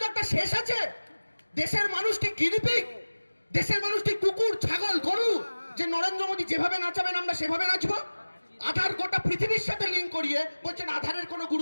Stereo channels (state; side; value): inverted; both; correlation -1.00